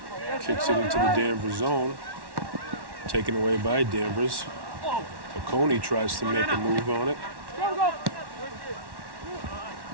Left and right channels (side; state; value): left; late; 1.1 ms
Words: Kicks it into the Danvers zone. Taken away by Danvers. Oconee tries to make a move on it.